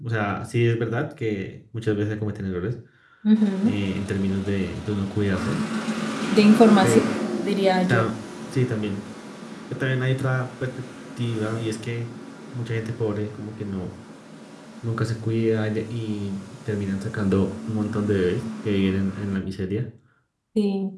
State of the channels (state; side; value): identical; both; correlation 1.00